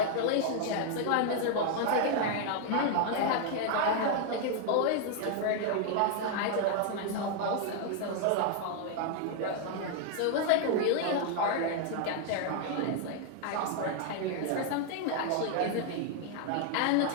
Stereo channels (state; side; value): different; both; correlation 0.00